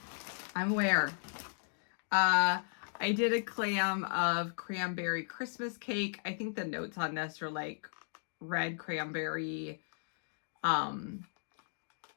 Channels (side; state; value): right; silent; digital silence